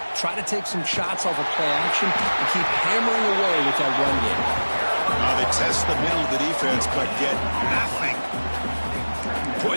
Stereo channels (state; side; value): inverted; both; correlation -1.00